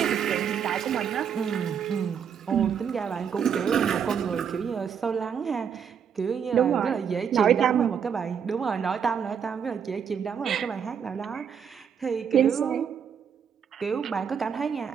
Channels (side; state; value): left; quieter; 7.5 dB